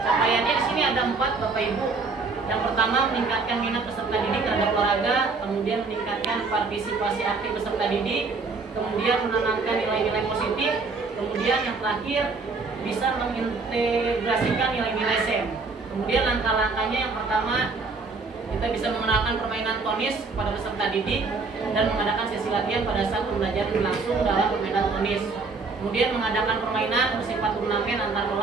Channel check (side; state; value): left; quieter; 4.1 dB